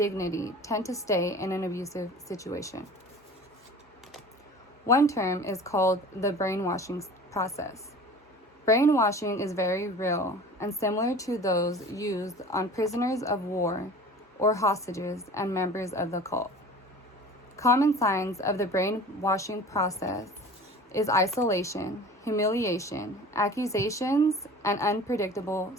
tend to stay in an abusive situation. One term is called the brainwashing process. Brainwashing is very real and similar to those used on prisoners of war or hostages and members of the cult. Common signs of the brainwashing process is isolation, humiliation, accusations, and unpredictable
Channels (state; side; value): normal; both; correlation 0.41